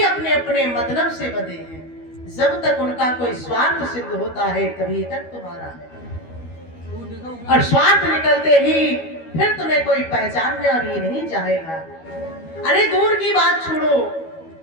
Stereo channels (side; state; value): right; late; 12 ms